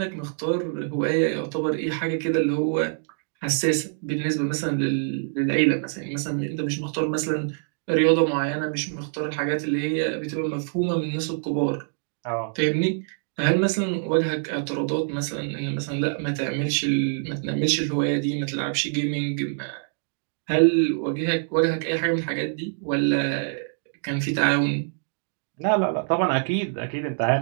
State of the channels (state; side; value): silent; left; digital silence